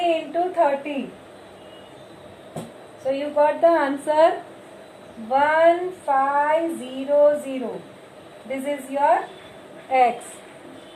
into 30. So you got the answer 1500. This is your x.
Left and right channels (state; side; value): identical; both; correlation 1.00